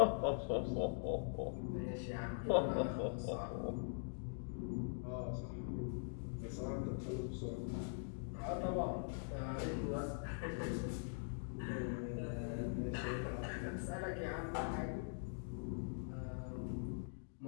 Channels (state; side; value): silent; right; digital silence